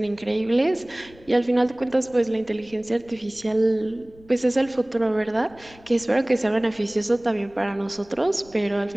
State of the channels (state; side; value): noise; left; rumble, 25 dB below the sound